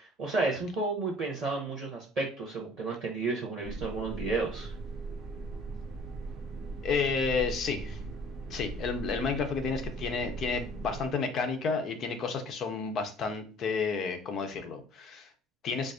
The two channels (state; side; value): normal; both; correlation 0.53